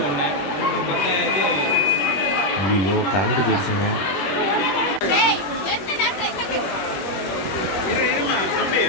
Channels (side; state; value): right; late; 21 ms